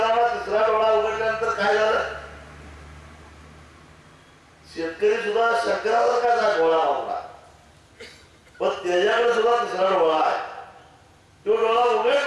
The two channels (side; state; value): both; identical; correlation 1.00